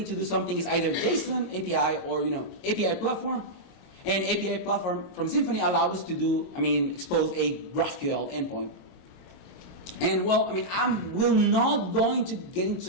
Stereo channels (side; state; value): right; late; 22 ms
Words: to do something, it's either JSON, API, or API platform. And API platform from Symfony allows us to do, expose a GraphQL endpoint. And well, I will not going to get